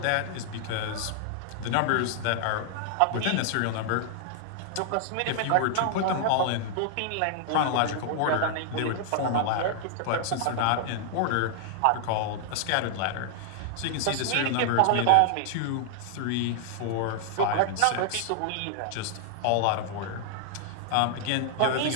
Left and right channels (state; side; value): different; both; correlation 0.00